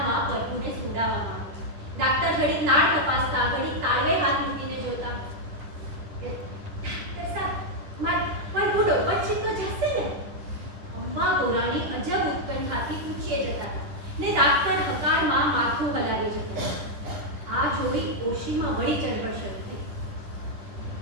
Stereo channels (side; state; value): left; late; 10 ms